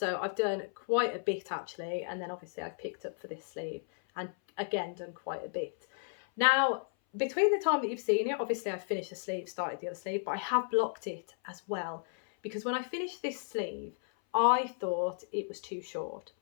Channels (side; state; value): right; silent; 55 dB below the other